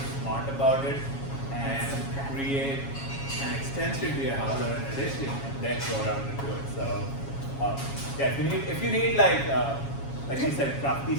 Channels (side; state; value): right; late; 7.3 ms